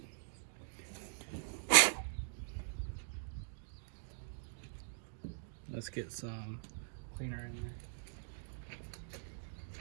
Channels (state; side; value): silent; left; digital silence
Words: Let's get some cleaner in there.